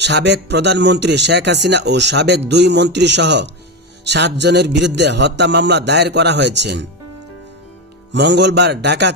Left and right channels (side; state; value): both; normal; correlation 0.14